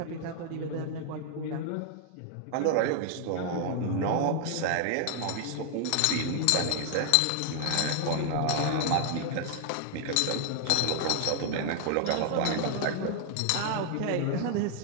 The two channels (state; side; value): different; both; correlation 0.00